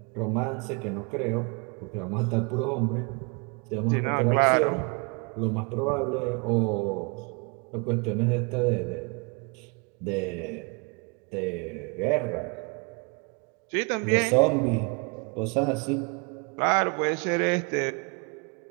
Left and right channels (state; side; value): quieter; left; 32.8 dB